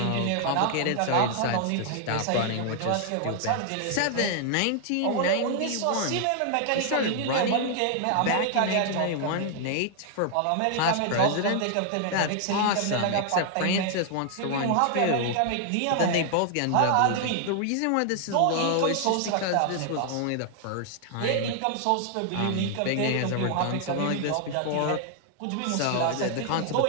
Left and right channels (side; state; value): both; different; correlation 0.00